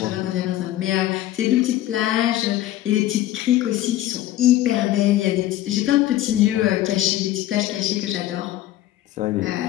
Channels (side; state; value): right; quieter; 14.0 dB